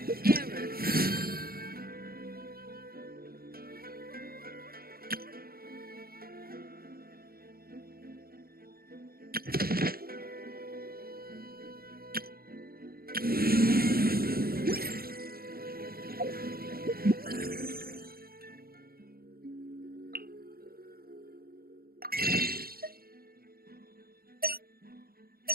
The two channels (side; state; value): left; late; 0.44 ms